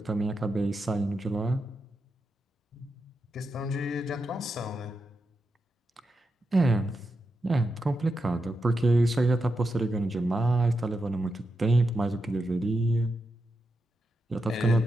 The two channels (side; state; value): both; normal; correlation 0.87